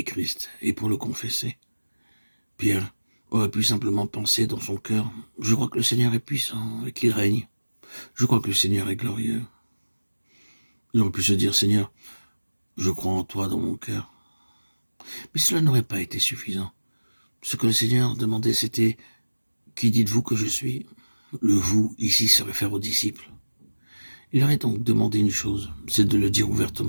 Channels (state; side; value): inverted; both; correlation -1.00